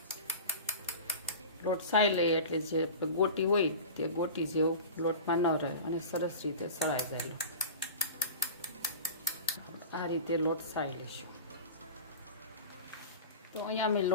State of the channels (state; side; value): inverted; both; correlation -0.34